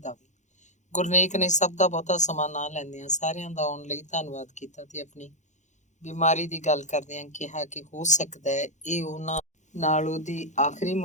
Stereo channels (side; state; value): right; late; 0.35 ms